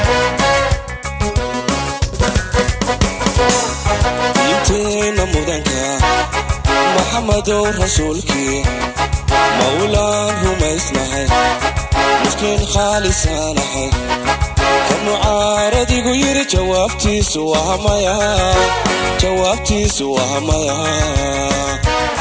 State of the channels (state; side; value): identical; both; correlation 1.00